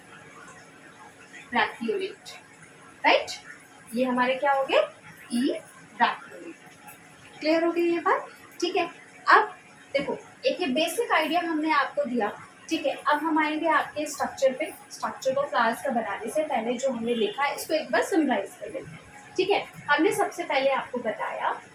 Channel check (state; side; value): identical; both; correlation 1.00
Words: ब्रैक्टियोलेट, राइट। ये हमारे क्या हो गए, ई ब्रैक्टियोलेट। क्लियर हो गई ये बात, ठीक है। अब देखो एक ये बेसिक आइडिया हमने आपको दिया, ठीक है। अब हम आएंगे आपके स्ट्रक्चर पे, स्ट्रक्चर को फ्लावर्स का बनाने से पहले जो हमने लिखा है इसको एक बार समराइज कर लेते हैं, ठीक है। हमने सबसे पहले आपको बताया